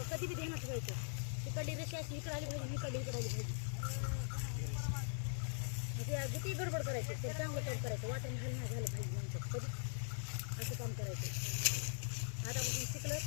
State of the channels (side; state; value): right; silent; digital silence